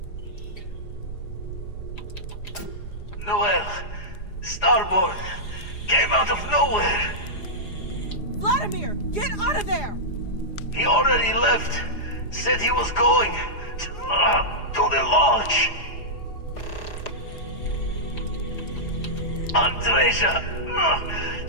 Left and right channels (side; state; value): right; late; 4.9 ms